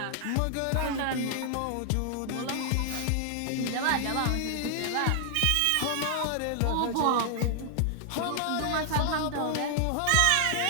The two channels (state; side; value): different; both; correlation 0.00